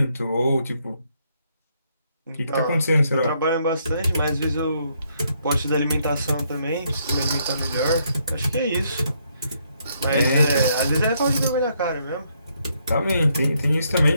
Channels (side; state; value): both; inverted; correlation -0.73